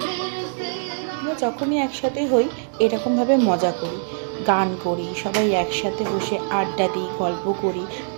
আমরা যখনই একসাথে হই এরকমভাবে মজা করি, গান করি, সবাই একসাথে বসে আড্ডা দিই, গল্প করি।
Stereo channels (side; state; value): left; silent; digital silence